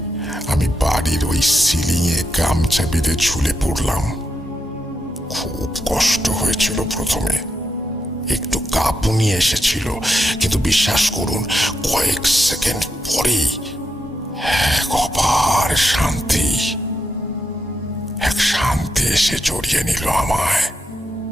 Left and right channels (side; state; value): both; normal; correlation 0.83